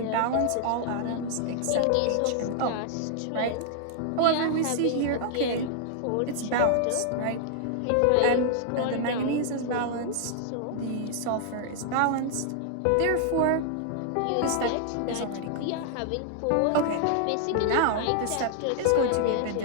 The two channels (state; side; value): different; both; correlation 0.00